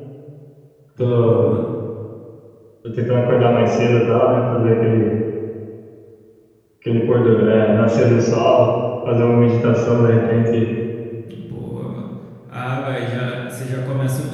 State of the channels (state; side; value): identical; both; correlation 1.00